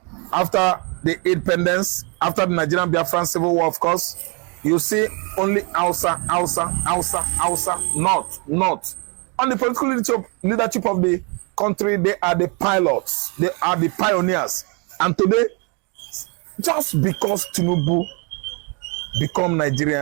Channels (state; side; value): quieter; left; 33.9 dB